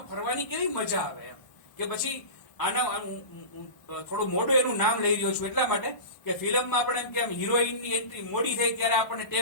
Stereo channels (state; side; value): late; right; 1.1 ms